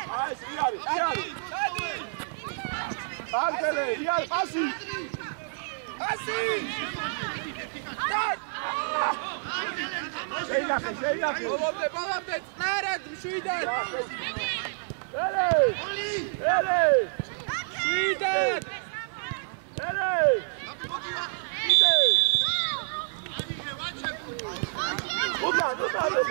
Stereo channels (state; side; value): silent; left; digital silence